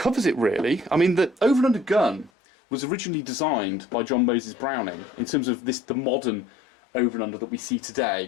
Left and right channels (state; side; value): drops out; right; at 2.3 s